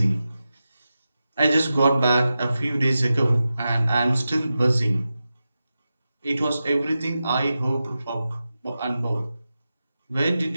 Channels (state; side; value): inverted; both; correlation -0.92